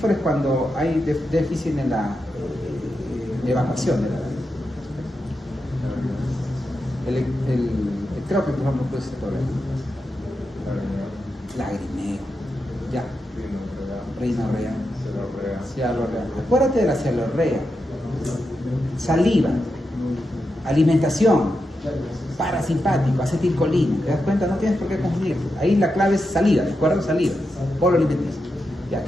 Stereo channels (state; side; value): normal; both; correlation 0.87